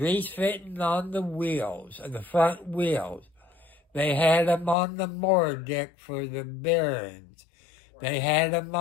fitting on the wheels, the front wheels. They had them on the motor deck for the bearings. They had them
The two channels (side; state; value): right; drops out; at 4.8 s